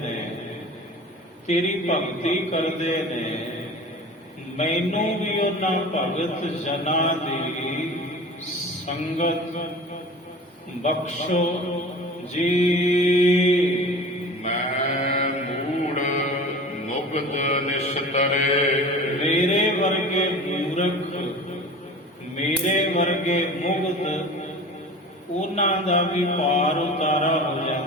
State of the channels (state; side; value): normal; both; correlation 0.38